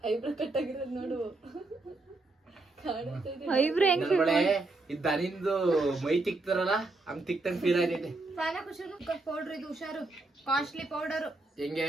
ಐಬ್ರೋ ಕಟ್ ಆಗಿರೋದು ನೋಡು. ಐಬ್ರೋ ಹೆಂಗ್ ದನಿಂದು ಮೈ ತಿಕ್ತಾರಲ್ಲ ಹಂಗ್ ತಿಕ್ತಂಗ್ ಫೀಲ್ ಆಗೈತೆ. ಪೌಡರ್ ಇದು ಹುಷಾರು, ಕಾಸ್ಟ್ಲಿ ಪೌಡರ್. ಹೆಂಗೆ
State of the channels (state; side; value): quieter; left; 3.1 dB